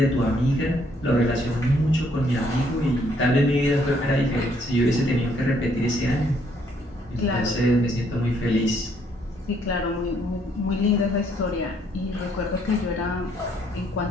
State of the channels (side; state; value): both; normal; correlation 0.68